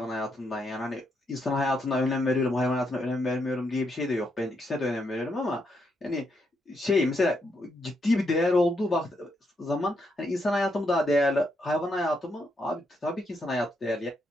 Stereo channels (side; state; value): both; normal; correlation 0.79